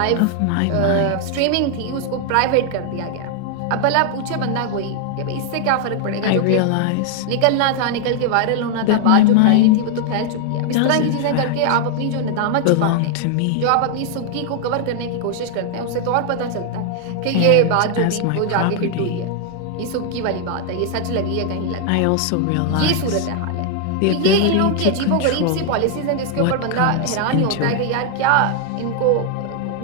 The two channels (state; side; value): different; both; correlation 0.00